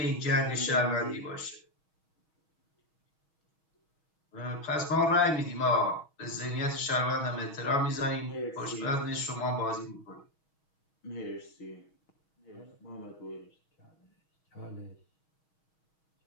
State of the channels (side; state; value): right; late; 6.3 ms